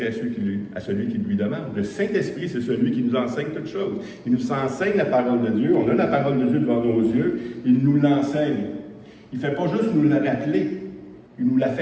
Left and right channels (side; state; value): both; identical; correlation 1.00